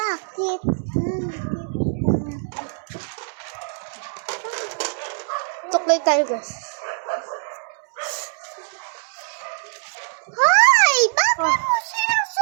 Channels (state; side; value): silent; left; 63 dB below the other